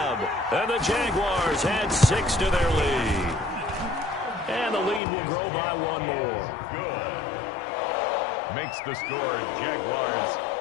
And the Jaguars add 6 to their lead. And the lead will grow by 1 more. Good. Makes the score Jaguars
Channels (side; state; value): right; drops out; at 5.0 s